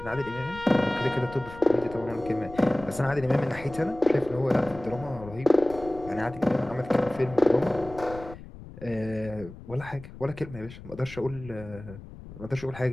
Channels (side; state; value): left; noise; rumble, 15 dB below the sound